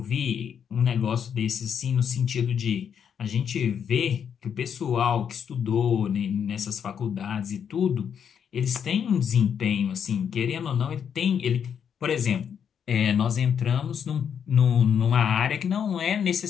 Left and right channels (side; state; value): right; quieter; 7.8 dB